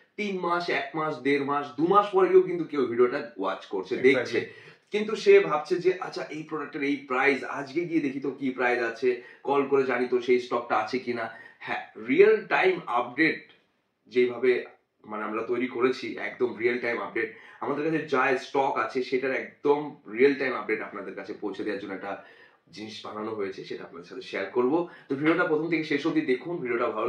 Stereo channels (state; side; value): identical; both; correlation 1.00